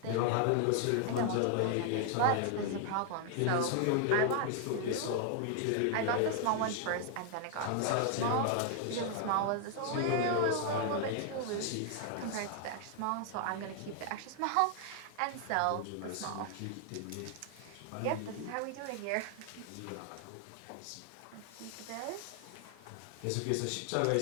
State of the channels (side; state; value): both; different; correlation 0.00